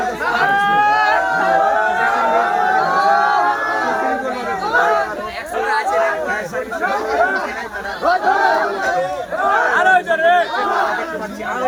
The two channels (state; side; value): identical; both; correlation 1.00